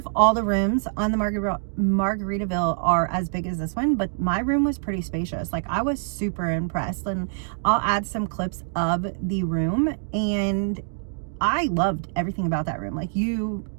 all the rooms on the Margaritaville are as big as this one, but my room was pretty spacious. Like, I was super impressed, and I'll add some clips of the room, and I loved everything about that room. Like,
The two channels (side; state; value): left; silent; digital silence